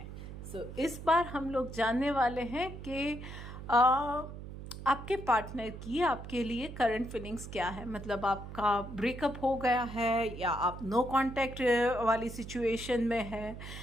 इस बार हम लोग जानने वाले हैं कि आपके पार्टनर की आपके लिए करंट फीलिंग्स क्या है। मतलब आपका ब्रेकअप हो गया है या आप नो कांटेक्ट वाली सिचुएशन में है,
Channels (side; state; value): right; noise; hum, 11 dB below the sound